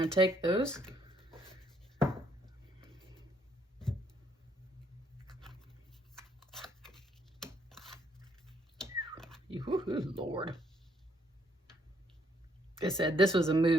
to take those. Lord. It said this was a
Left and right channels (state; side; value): normal; both; correlation 0.69